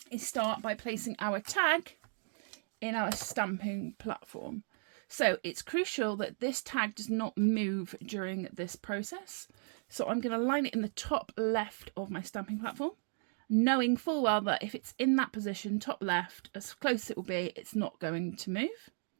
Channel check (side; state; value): left; silent; 54 dB below the other